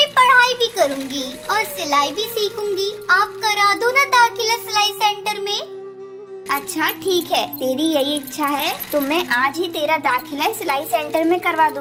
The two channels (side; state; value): both; identical; correlation 1.00